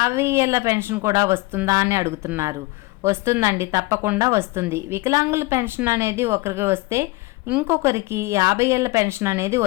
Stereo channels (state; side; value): quieter; right; 22.6 dB